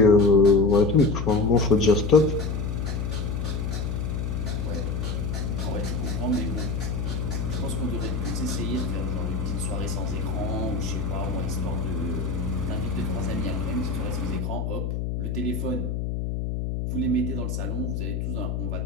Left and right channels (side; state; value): left; noise; hum, 2 dB below the sound